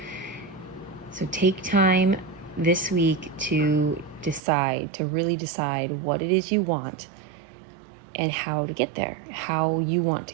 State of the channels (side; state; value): left; drops out; at 4.4 s